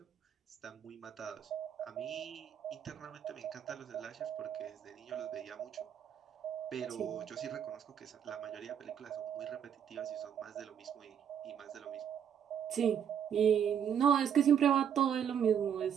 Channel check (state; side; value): quieter; left; 8.5 dB